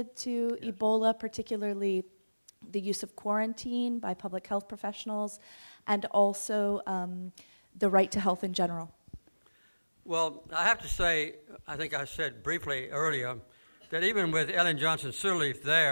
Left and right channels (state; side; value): inverted; both; correlation -1.00